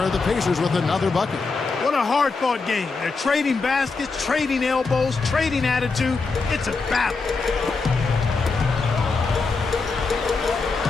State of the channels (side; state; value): right; quieter; 4.2 dB